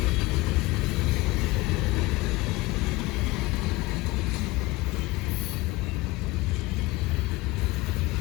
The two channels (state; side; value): quieter; right; 20.4 dB